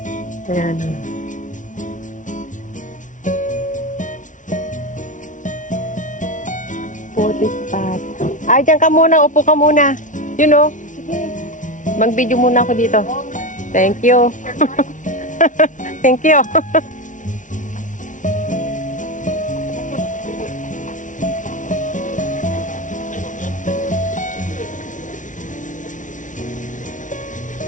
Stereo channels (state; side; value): late; right; 0.37 ms